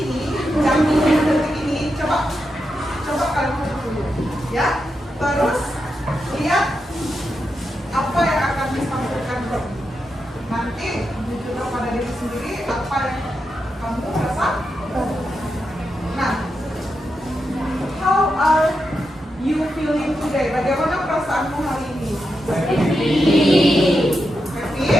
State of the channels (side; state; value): both; normal; correlation 0.86